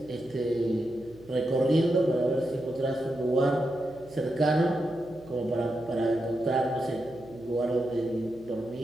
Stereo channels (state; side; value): noise; right; hum, 23 dB below the sound